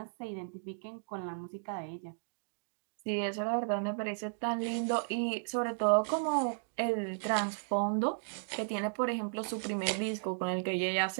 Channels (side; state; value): left; silent; digital silence